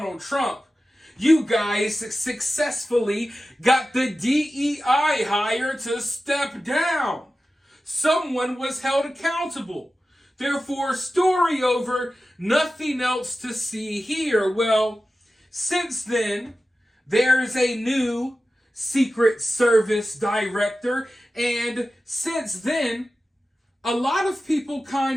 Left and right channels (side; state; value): both; normal; correlation 0.94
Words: Trump. You guys successfully got the DEI hire to step down. Someone was held accountable. Therefore, story over, nothing else to see here. Well, since then, there's a new Secret Service director, and since then, a lot of people